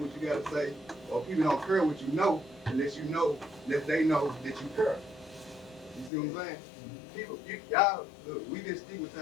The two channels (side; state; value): right; drops out; at 6.1 s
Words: you got to say, or people don't care what you know unless you know that they know that you care. You see what I'm saying? People, y'all, look, we've been